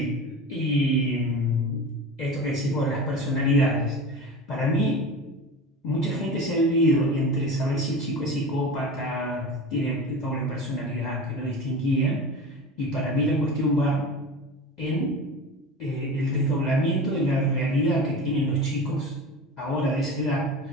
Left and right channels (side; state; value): both; normal; correlation 0.31